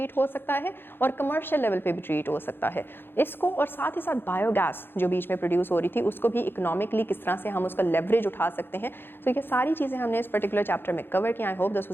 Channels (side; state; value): right; late; 0.10 ms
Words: हो सकता है और कमर्शियल लेवल पे भी ट्रीट हो सकता है इसको, और साथ ही साथ बायोगैस जो बीच में प्रोड्यूस हो रही थी उसको भी इकोनॉमिकली किस तरह से हम उसका लेवरेज उठा सकते हैं। तो ये सारी चीज़ें हमने इस पर्टिकुलर चैप्टर में कवर किया। I hope this